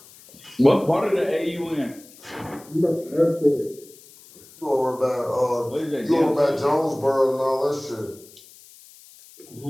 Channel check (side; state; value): left; noise; hiss, 23 dB below the sound